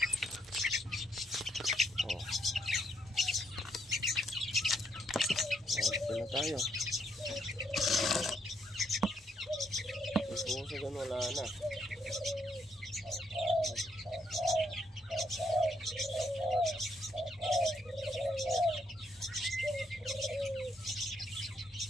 O. Dito na tayo. May pusa dyan, wala na.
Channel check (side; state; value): both; normal; correlation 0.74